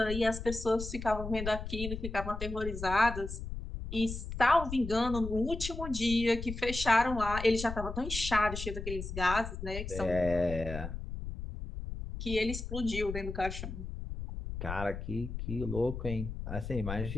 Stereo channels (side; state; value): left; noise; rumble, 7 dB below the sound